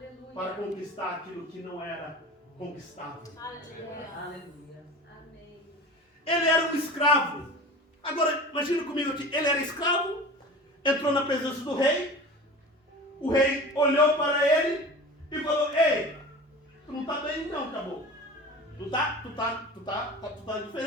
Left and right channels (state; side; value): normal; both; correlation 0.36